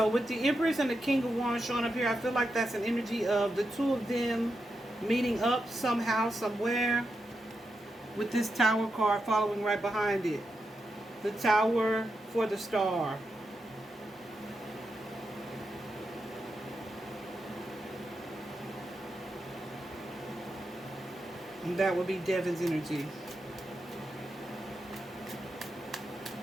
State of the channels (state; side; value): normal; both; correlation 0.87